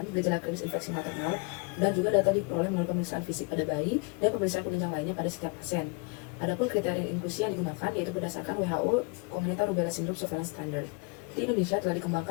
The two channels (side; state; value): right; quieter; 29.0 dB